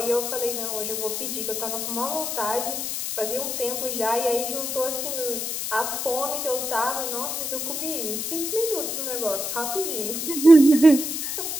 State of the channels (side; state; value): left; noise; hiss, 3 dB below the sound